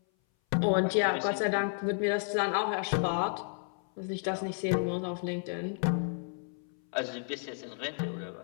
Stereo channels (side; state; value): right; silent; 57 dB below the other